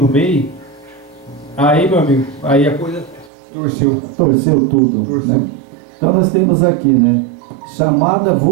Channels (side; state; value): left; drops out; at 3.3 s